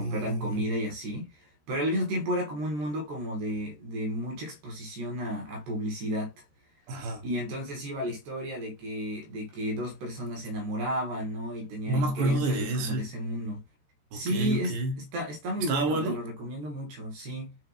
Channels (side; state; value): left; late; 13 ms